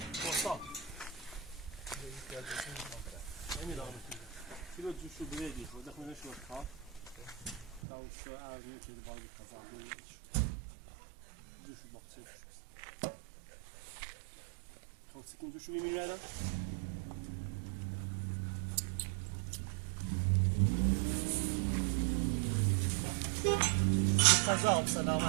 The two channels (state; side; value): drops out; left; at 7.8 s